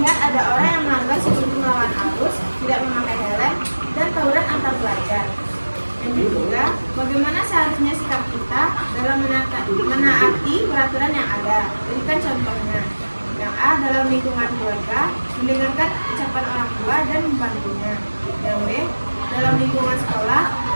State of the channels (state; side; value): inverted; both; correlation -1.00